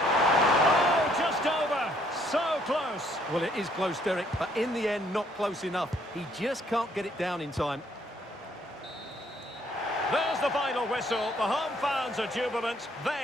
just over. So close. Well, it is close, Derek, but in the end, not close enough. He just can't get it down in time. There's the final whistle. The home fans are jubilant.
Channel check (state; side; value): normal; both; correlation 0.66